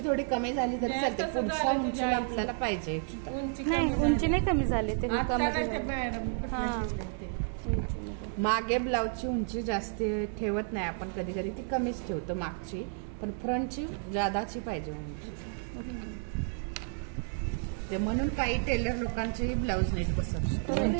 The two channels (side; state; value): left; silent; 57 dB below the other